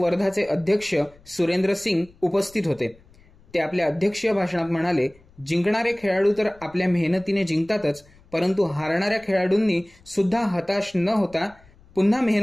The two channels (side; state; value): left; noise; rumble, 27 dB below the sound